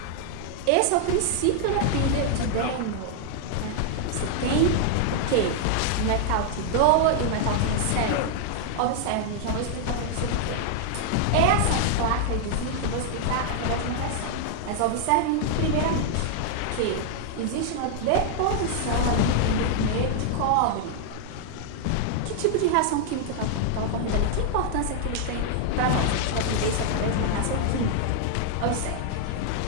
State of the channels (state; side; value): different; both; correlation 0.00